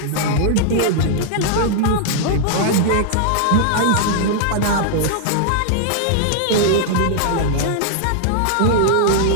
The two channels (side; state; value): both; different; correlation -0.01